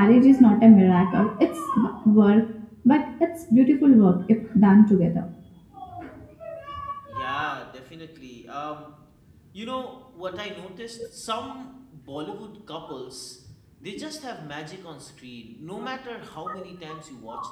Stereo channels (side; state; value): both; identical; correlation 1.00